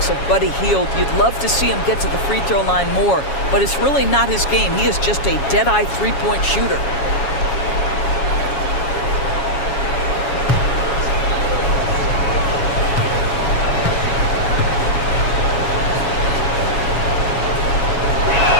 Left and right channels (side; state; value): right; late; 7.2 ms